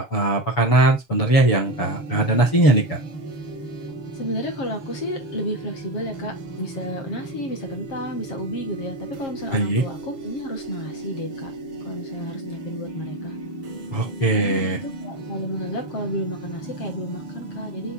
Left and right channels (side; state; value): right; late; 7.0 ms